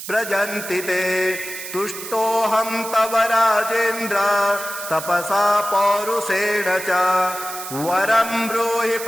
व्रजन्ति ते तुष्टोऽहं तव राजेन्द्र तपसा पौरुषेण च वरं ब्रूहि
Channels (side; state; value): right; noise; hiss, 10 dB below the sound